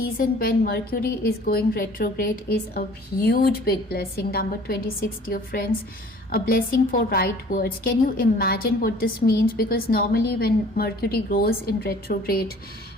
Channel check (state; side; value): normal; both; correlation 0.51